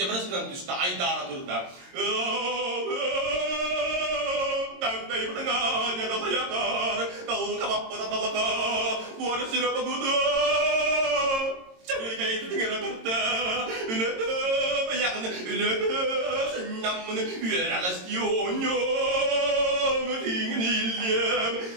kan tu sta ai da tur da tak dai banga nya da ya kar tau ka ba halaka bu ara sıra bakıda çarıga yettiğine kadar ülede yakını ülede senamını üyere istiyornyum dingin illem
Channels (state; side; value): late; left; 22 ms